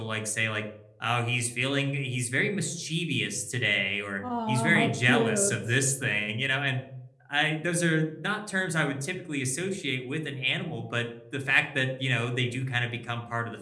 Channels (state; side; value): identical; both; correlation 1.00